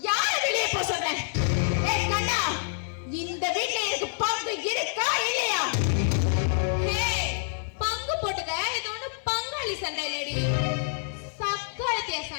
யாரு வெளியே போக சொல்றேன்? கண்ணா, இந்த வீட்டுல எனக்கு பங்கு இருக்கா இல்லையா? பங்கு போட்டுக்க. இது ஒண்ணு பங்காளி சண்டை இல்லடி, சக்காலத்திய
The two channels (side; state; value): right; silent; 60 dB below the other